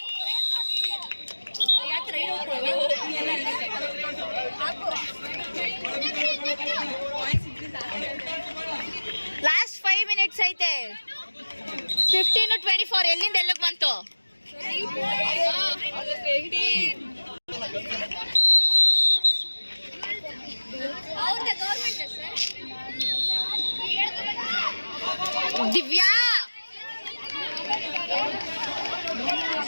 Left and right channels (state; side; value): inverted; both; correlation -1.00